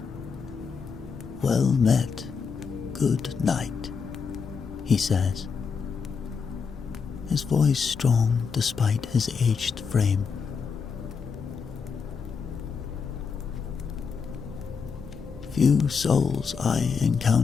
"Well met, good night," he says, his voice strong despite his aged frame. "Few souls I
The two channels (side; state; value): right; quieter; 5.7 dB